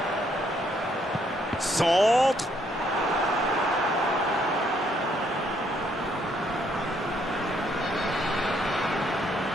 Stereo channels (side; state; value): both; normal; correlation 0.70